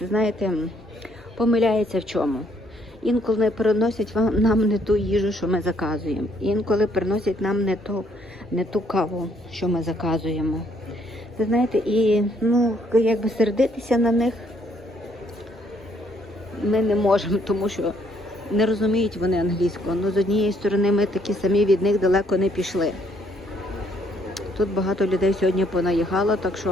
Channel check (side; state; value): both; normal; correlation 0.68